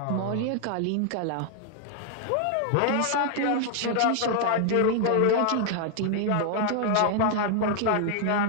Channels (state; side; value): different; both; correlation 0.00